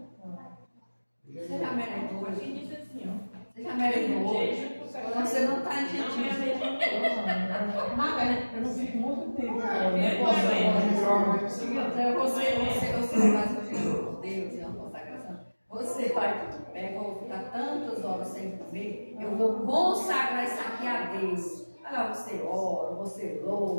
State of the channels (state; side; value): inverted; both; correlation -1.00